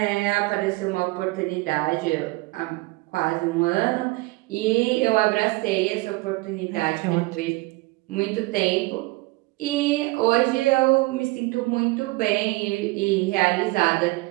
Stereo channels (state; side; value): quieter; left; 22.7 dB